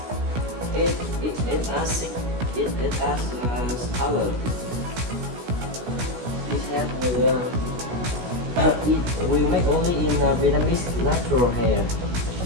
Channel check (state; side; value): late; left; 16 ms